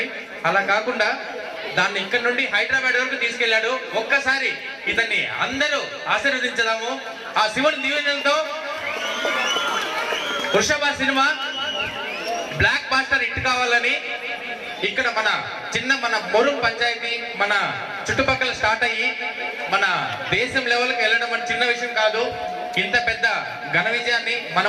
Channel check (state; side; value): identical; both; correlation 1.00